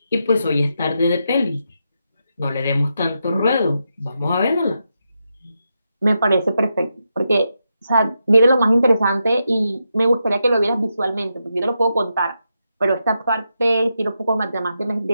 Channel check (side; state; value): both; inverted; correlation -0.85